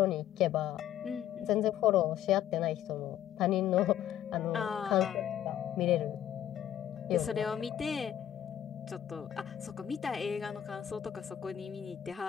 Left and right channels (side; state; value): right; quieter; 10.9 dB